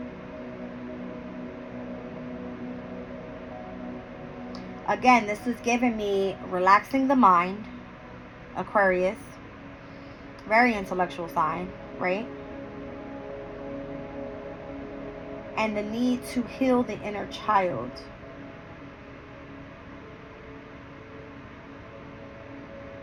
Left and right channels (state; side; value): identical; both; correlation 1.00